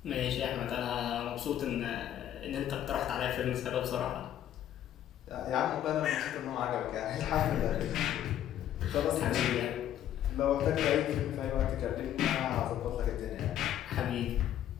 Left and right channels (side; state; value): right; quieter; 11.3 dB